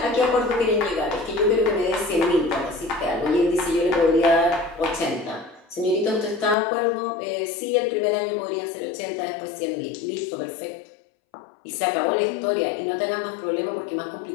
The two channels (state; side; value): drops out; right; at 6.6 s